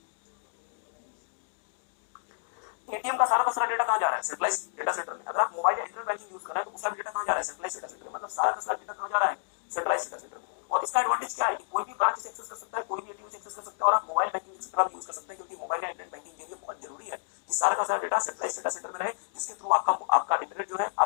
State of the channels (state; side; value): silent; right; digital silence